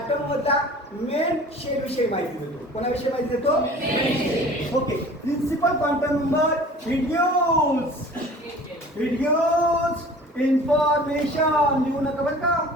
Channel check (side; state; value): both; normal; correlation 0.45